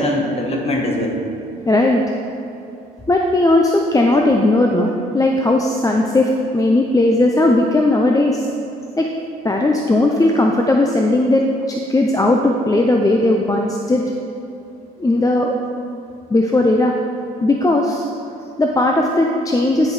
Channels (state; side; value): normal; both; correlation 0.73